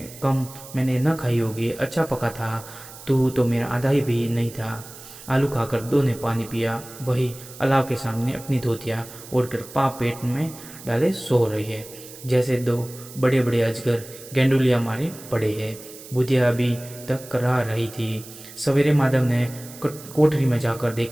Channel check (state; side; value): noise; right; hiss, 17 dB below the sound